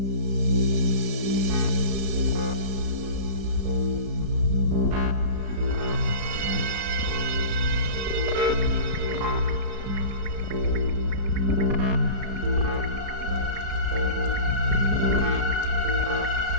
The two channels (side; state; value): right; late; 4.7 ms